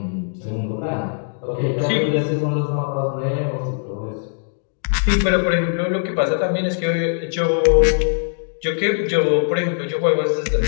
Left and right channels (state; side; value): silent; right; digital silence